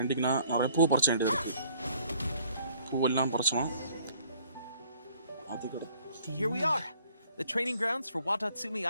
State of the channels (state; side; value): inverted; both; correlation -0.59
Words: நிறைய பூ பறிச்ச வேண்டியது இருக்கு. பூவெல்லாம் பறிச்சோம். அது Here we are, the training grounds for Watatsumi